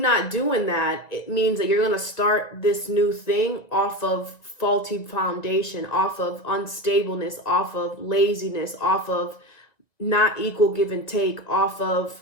doing that, it means that you're going to start this new thing off of faulty foundation, off of unstableness, off of laziness, off of not equal give and take, off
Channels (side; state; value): right; late; 1.9 ms